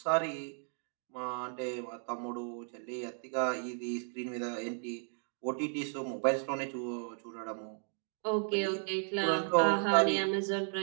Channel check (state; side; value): silent; left; 55 dB below the other